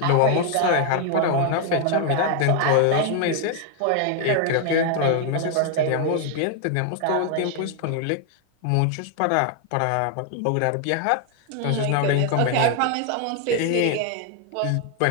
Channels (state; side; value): different; both; correlation 0.00